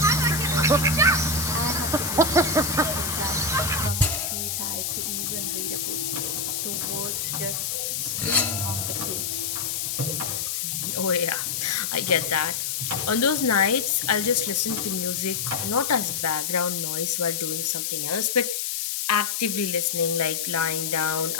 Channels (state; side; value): noise; left; hiss, 1 dB below the sound